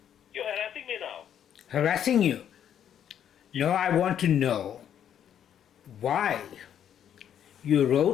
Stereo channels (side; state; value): right; quieter; 9.5 dB